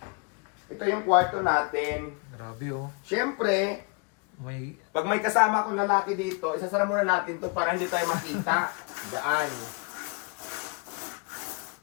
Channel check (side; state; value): right; quieter; 33.6 dB